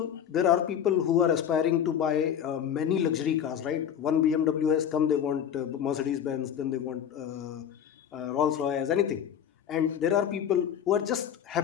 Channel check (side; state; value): right; quieter; 9.0 dB